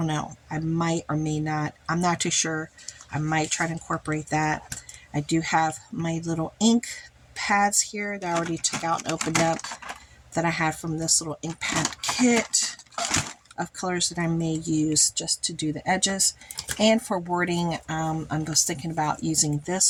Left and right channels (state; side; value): identical; both; correlation 1.00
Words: know. I might or may not. I'm not too sure. I might try to incorporate that. I do have my little ink pads here that I already took out and opened up that I had from this little ink pad kit of colors that I may use just to do the edges. And for wording, I'm just thinking about using